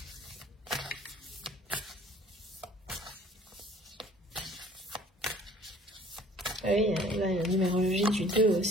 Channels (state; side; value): normal; both; correlation 0.52